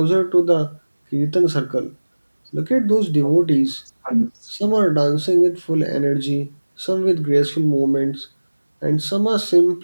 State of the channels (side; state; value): both; inverted; correlation -1.00